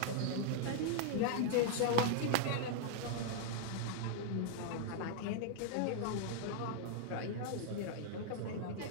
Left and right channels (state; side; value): different; both; correlation 0.00